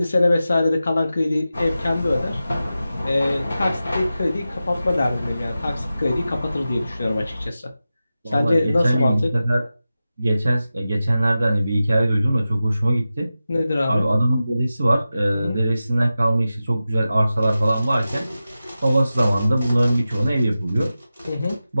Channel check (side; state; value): both; inverted; correlation -0.93